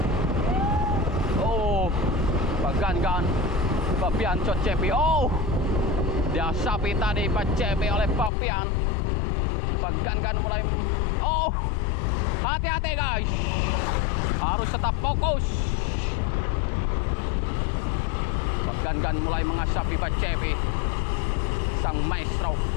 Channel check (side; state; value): right; drops out; at 8.3 s